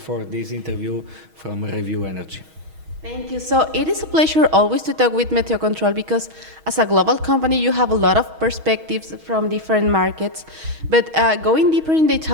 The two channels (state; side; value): late; left; 6.3 ms